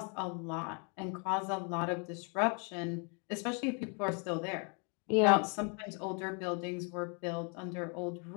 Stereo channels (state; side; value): quieter; right; 37.0 dB